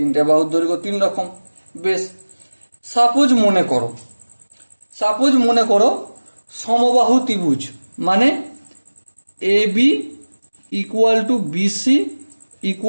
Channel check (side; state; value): both; inverted; correlation -1.00